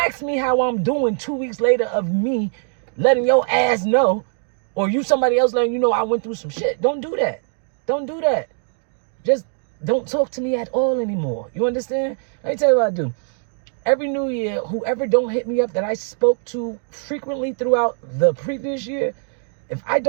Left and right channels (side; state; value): left; silent; 63 dB below the other